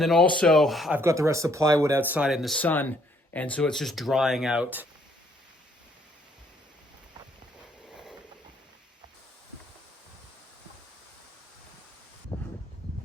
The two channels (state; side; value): normal; both; correlation 0.67